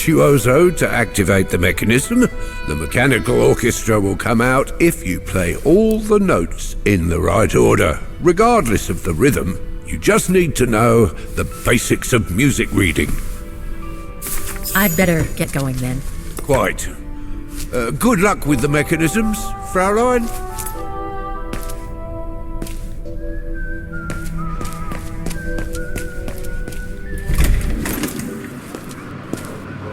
to activate the mechanism. The mechanical orchestra will come out if you play all the notes in the right order, regardless of the rhythm. You just need to know the basics of music reading. I'd better get going then. Quite. Good luck with the mechanisms, Fraulein.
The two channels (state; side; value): identical; both; correlation 1.00